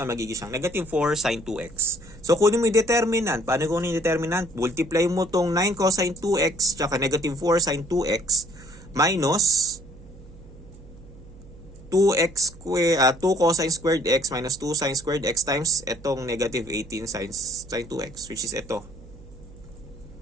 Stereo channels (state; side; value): noise; right; hum, 19 dB below the sound